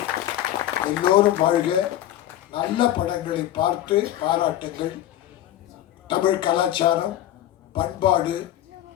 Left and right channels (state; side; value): quieter; right; 12.8 dB